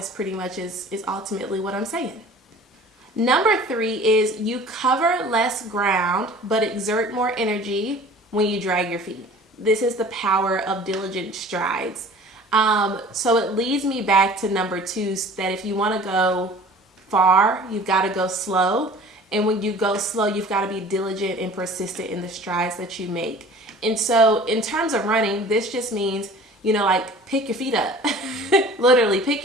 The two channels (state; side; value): normal; both; correlation 0.46